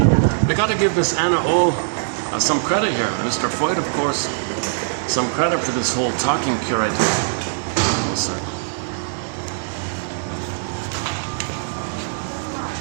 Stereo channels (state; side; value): silent; left; 59 dB below the other